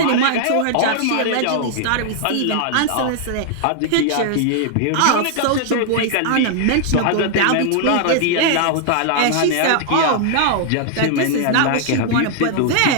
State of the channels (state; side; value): different; both; correlation 0.00